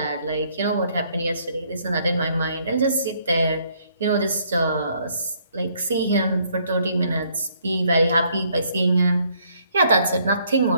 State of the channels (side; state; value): both; inverted; correlation -0.67